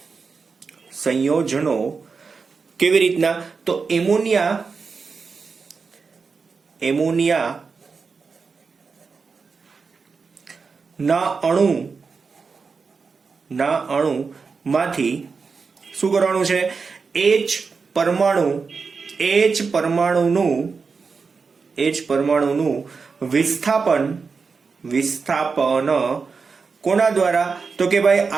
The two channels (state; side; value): quieter; left; 5.0 dB